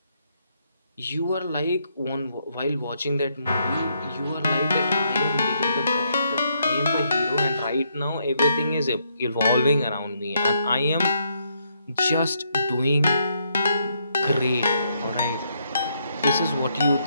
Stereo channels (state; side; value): inverted; both; correlation -0.75